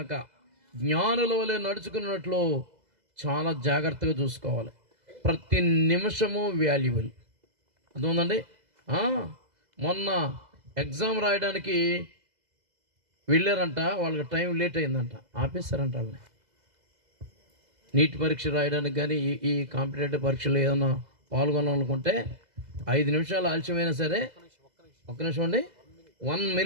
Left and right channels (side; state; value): left; late; 2.0 ms